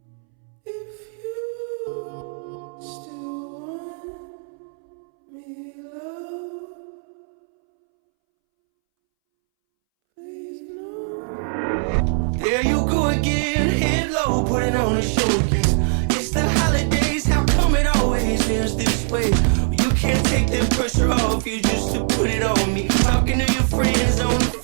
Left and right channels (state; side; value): silent; left; 64 dB below the other